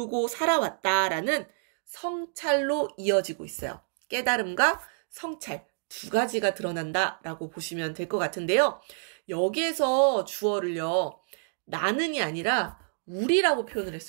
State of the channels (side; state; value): left; silent; 59 dB below the other